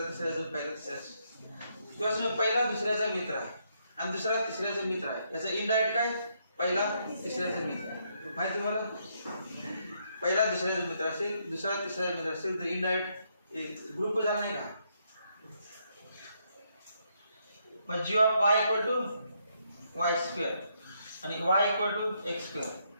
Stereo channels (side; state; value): both; inverted; correlation -0.75